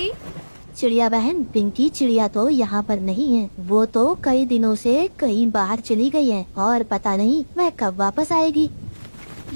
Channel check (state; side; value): inverted; both; correlation -1.00